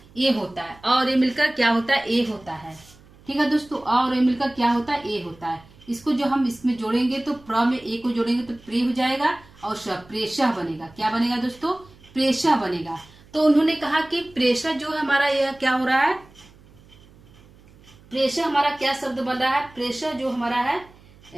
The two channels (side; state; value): right; noise; hum, 25 dB below the sound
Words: ए होता है, और ए मिलकर क्या होता है, ए होता है। ठीक है दोस्तों, अ और ए मिलकर क्या होता है, ए होता है। इसको जो हम इसमें जोड़ेंगे तो प्र में ए को जोड़ेंगे तो प्रे हो जाएगा, और प्रेषः बनेगा। क्या बनेगा दोस्तों, प्रेषः बनेगा। तो उन्होंने कहा कि प्रेषः जो है हमारा यह क्या हो रहा है, प्रेषः हमारा क्या शब्द बन रहा है, प्रेषः जो हमारा है,